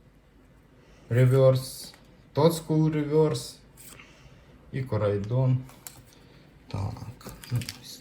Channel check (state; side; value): identical; both; correlation 1.00